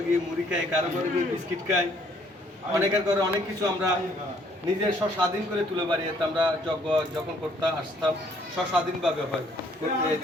গিয়ে মুড়ি খাই, কারো ঘরে গিয়ে বিস্কিট খাই, অনেকের ঘরে অনেক কিছু আমরা নিজের স্বাধীন করে তুলে বাড়িতে আমরা যজ্ঞ যখন করতে আসতাম স্বাধীনভাবে হয়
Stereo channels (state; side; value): normal; both; correlation 0.64